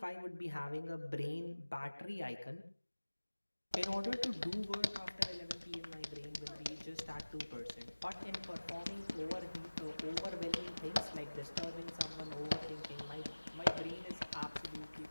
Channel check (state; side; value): inverted; both; correlation -1.00